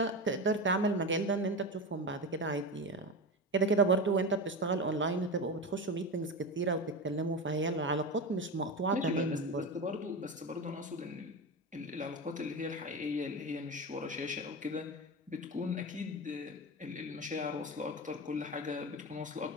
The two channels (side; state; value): both; normal; correlation 0.22